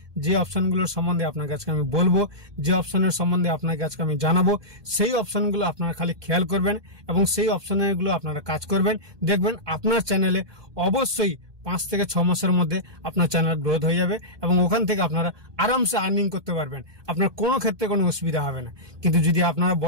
যে অপশনগুলোর সম্বন্ধে আপনাকে আজকে আমি বলবো, যে অপশনের সম্বন্ধে আপনাকে আজকে আমি জানাবো, সেই অপশনগুলো আপনারা খালি খেয়াল করবেন এবং সেই অপশনগুলো আপনারা কাজ করবেন। দেখবেন আপনার চ্যানেলে অবশ্যই 5 থেকে 6 মাসের মধ্যে আপনার চ্যানেল গ্রোথ হয়ে যাবে এবং ওখান থেকে আপনারা আরামসে আর্নিং করতে পারবেন। আপনার কোনো ক্ষেত্রে কোনো অসুবিধা হবে না। কিন্তু যদি আপনারা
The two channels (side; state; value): left; late; 1.2 ms